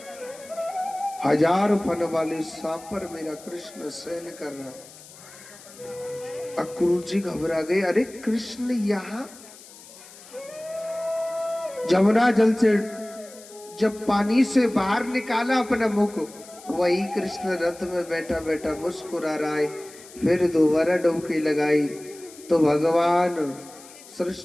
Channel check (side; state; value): left; noise; hiss, 20 dB below the sound